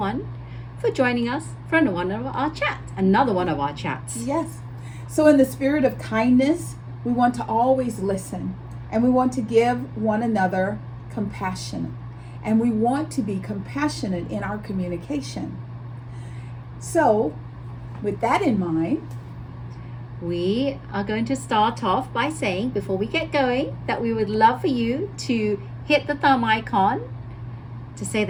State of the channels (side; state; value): both; identical; correlation 1.00